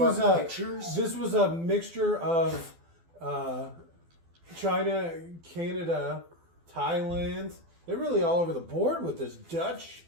Pictures? This was a mixture of China, Canada, Thailand. They're really all over the board with this. Dutch.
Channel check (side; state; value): left; late; 12 ms